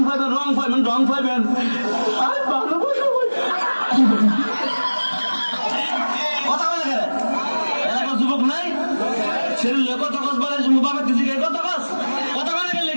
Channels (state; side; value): inverted; both; correlation -1.00